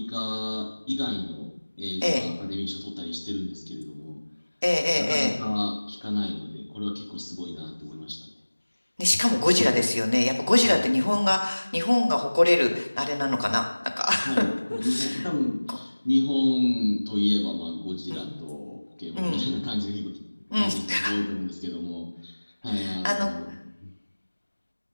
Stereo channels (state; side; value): inverted; both; correlation -1.00